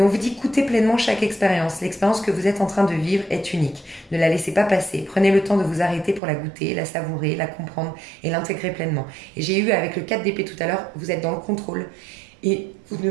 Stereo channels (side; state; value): left; drops out; at 6.2 s